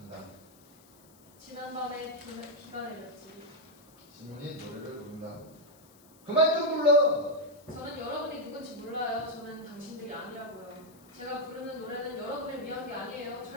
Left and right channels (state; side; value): noise; left; hiss, 26 dB below the sound